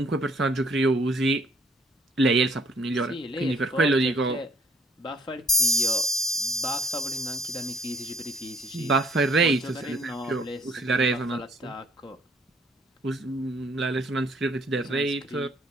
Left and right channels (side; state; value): both; normal; correlation 0.61